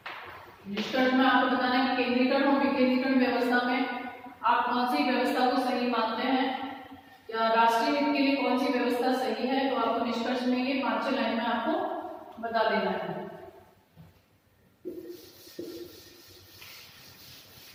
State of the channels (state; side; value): identical; both; correlation 1.00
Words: निष्कर्ष में आपको बताना है कि केंद्रीकरण और विकेंद्रीकरण व्यवस्था में आप कौन सी व्यवस्था को सही मानते हैं या राष्ट्रीय हित के लिए कौन सी व्यवस्था सही है। तो आपको निष्कर्ष में ये 5-6 लाइन में आपको बता देना है।